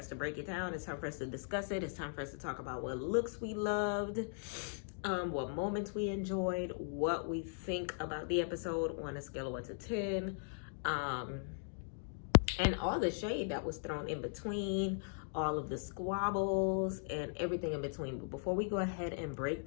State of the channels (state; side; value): silent; right; digital silence